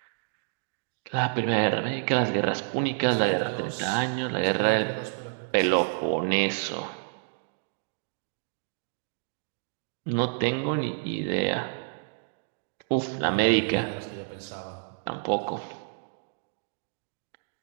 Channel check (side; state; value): left; silent; digital silence